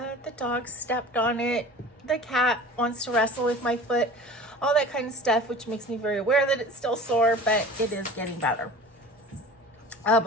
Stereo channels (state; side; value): normal; both; correlation 0.40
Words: dog stepped on it. The cat wants to wrestle with my foot, all that kind of stuff, which makes me very aware that it's still sore, but it is getting better.